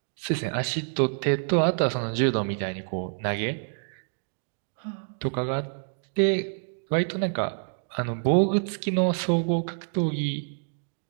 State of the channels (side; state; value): left; silent; digital silence